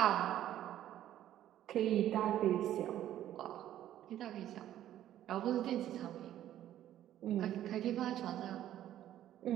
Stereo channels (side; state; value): left; quieter; 12.2 dB